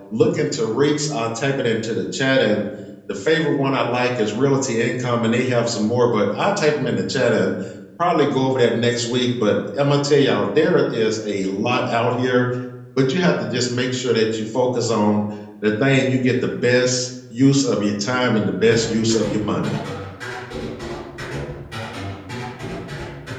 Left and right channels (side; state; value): both; identical; correlation 1.00